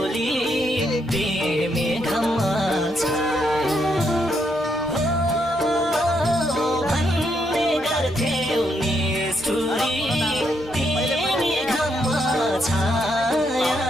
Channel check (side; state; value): both; normal; correlation 0.77